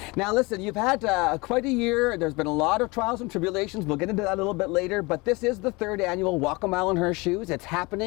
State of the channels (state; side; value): quieter; right; 25.1 dB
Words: Now listen, you've had quite a year. There's been a lot of trials and tribulations. We'll get into that a little bit later, but this is the 3rd annual Walk a Mile in Her Shoes. It's